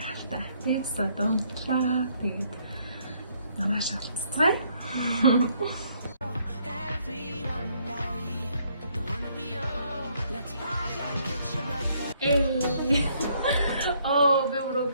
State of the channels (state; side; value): inverted; both; correlation -0.68